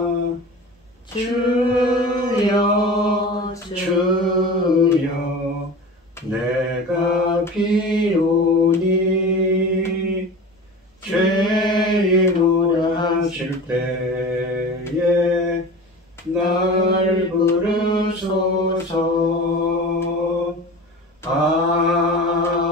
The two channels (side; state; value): both; normal; correlation 0.34